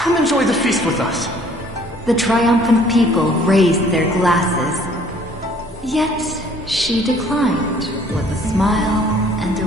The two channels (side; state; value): both; normal; correlation 0.57